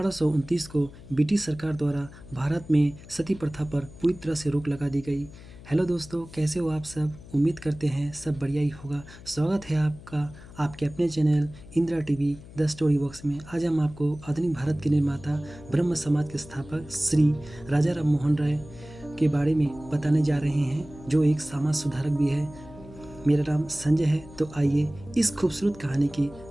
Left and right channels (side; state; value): left; noise; hum, 18 dB below the sound